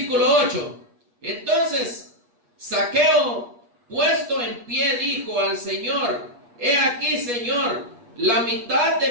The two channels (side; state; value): left; late; 8.4 ms